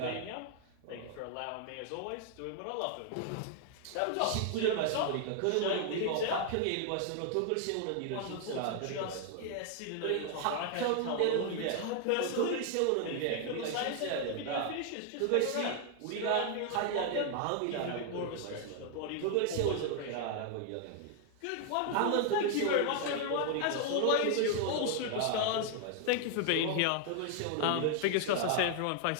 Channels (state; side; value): different; both; correlation 0.00